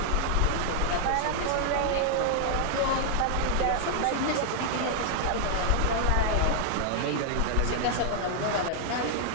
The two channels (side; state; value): both; different; correlation 0.00